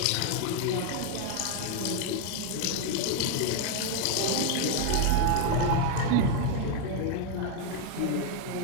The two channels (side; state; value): both; different; correlation 0.01